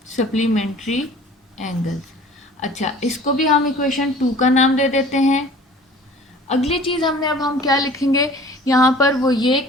Supplementary angles. अच्छा, इसको भी हम इक्वेशन 2 का नाम दे देते हैं। अगली चीज़ हम क्या लिखेंगे यहाँ पर, वो ये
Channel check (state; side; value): normal; both; correlation 0.47